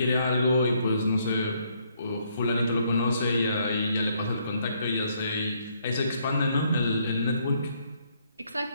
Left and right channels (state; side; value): inverted; both; correlation -0.70